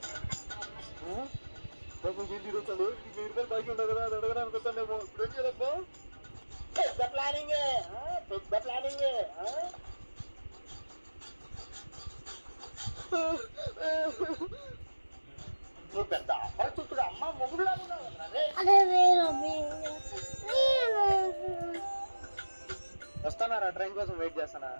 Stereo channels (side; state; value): both; inverted; correlation -1.00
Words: తిరుగుతాడు 1000 రూపాయలు బాకీ ఉండదు కదా అది అడగడానికి వస్తానేమో ఇప్పుడు ఏం చేయాలబ్బా పెద్ద ప్లానింగ్ నువ్వు పెద్ద అపరిచితుడు అమ్మ మొగుడులా ఉన్నావు వస్తానారా ట్రైన్ కోసం వెయిట్ చేస్తానా